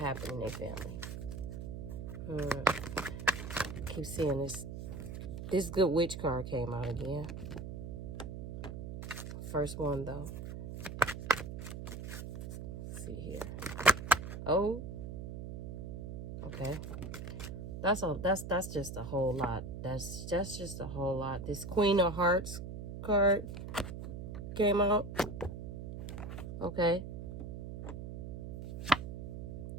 in their family. I keep seeing this good witch card came out again. First one though. Let's see here. Oh, okay. That's just a whole lot. That's just a whole lot. This Queen of Hearts card came out. Okay.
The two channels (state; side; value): noise; right; hum, 7 dB below the sound